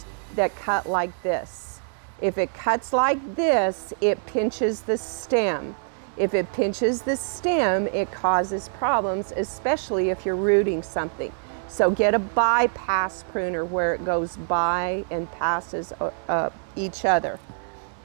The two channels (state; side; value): silent; left; digital silence